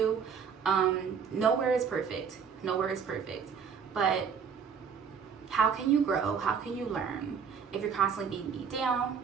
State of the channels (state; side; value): quieter; left; 6.6 dB